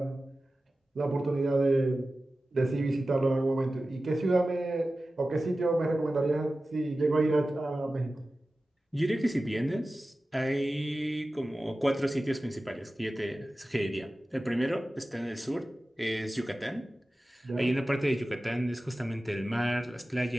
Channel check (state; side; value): normal; both; correlation 0.95